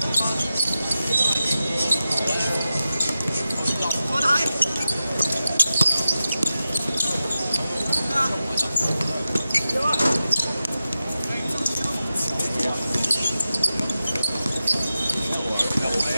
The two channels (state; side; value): inverted; both; correlation -0.92